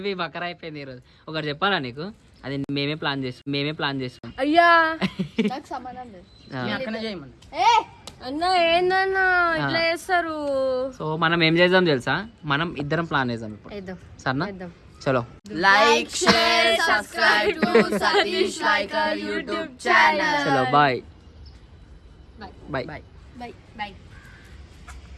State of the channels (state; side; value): identical; both; correlation 1.00